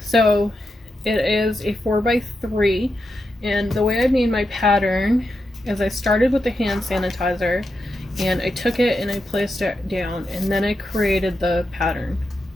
it is a 4x3, and the way I made my pattern is I started with the hand sanitizer and I took it and I placed it down, and then I created the pattern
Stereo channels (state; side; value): normal; both; correlation 0.87